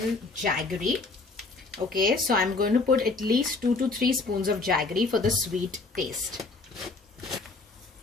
jaggery. Okay, so I'm going to put at least 2 to 3 spoons of jaggery for the sweet taste.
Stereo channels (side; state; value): right; quieter; 3.7 dB